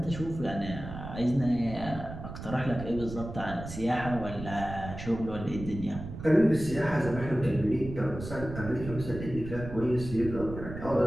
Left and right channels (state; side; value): noise; right; rumble, 10 dB below the sound